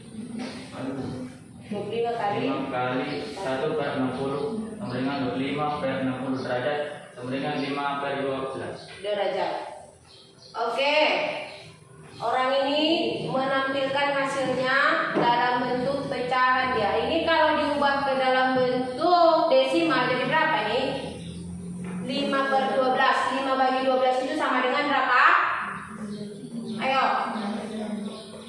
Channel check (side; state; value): both; identical; correlation 1.00